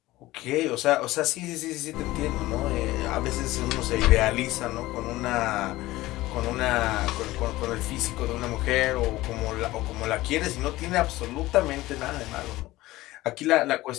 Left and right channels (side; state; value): right; quieter; 17.7 dB